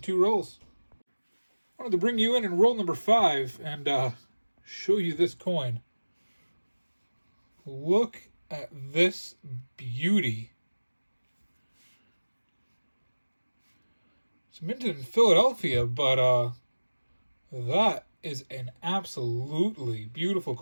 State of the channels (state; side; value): inverted; both; correlation -1.00